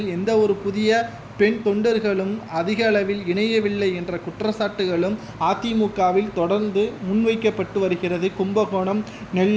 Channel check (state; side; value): identical; both; correlation 1.00